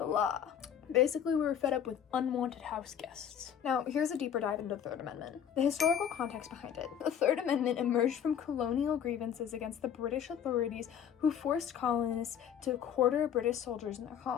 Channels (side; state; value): right; quieter; 8.8 dB